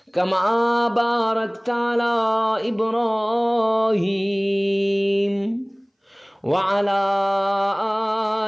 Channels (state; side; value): identical; both; correlation 1.00